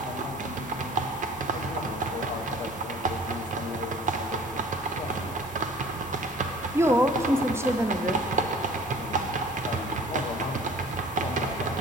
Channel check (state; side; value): normal; both; correlation 0.47